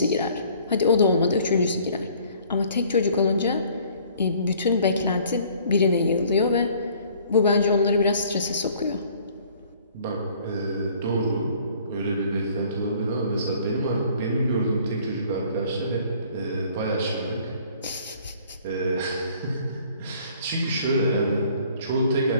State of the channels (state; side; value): inverted; both; correlation -0.56